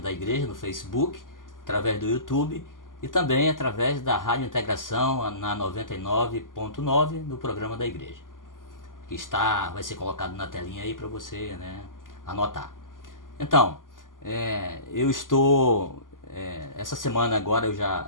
igreja no Facebook, através do YouTube e também através da Rádio Integração na 99.9 no programa da igreja, que vai ser colocado na telinha aí para você, né, anotar. Então, eu estou essa semana agora eu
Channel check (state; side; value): late; right; 0.89 ms